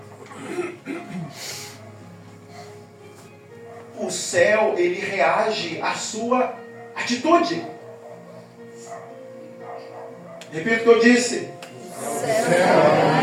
O céu, ele reage à sua atitude. Repita o que eu disse. O céu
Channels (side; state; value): both; identical; correlation 1.00